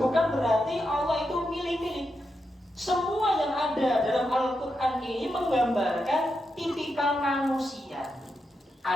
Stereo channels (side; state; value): both; normal; correlation 0.86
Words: bukan berarti Allah itu milih-milih. Semua yang ada dalam Al-Quran ini menggambarkan tipikal manusia.